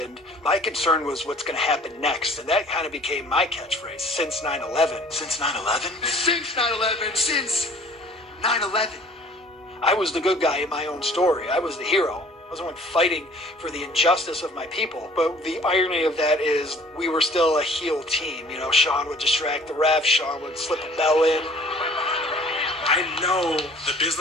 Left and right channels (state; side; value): normal; both; correlation 0.51